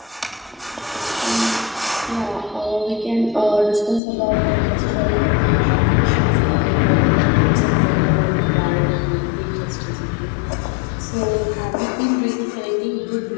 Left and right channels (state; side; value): drops out; right; at 4.0 s